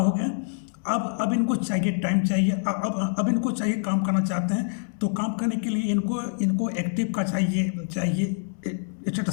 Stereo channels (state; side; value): silent; right; digital silence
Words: गया। अब इनको चाहिए टाइम चाहिए, अब इनको चाहिए, काम करना चाहते हैं। तो काम करने के लिए इनको एक्टिव का चाहिए